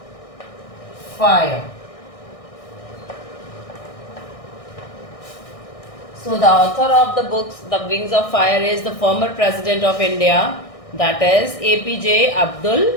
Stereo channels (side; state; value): right; late; 1.6 ms